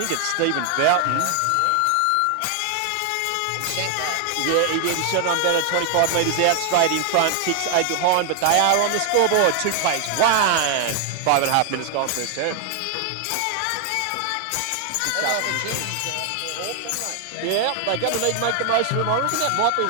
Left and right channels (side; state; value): both; different; correlation 0.00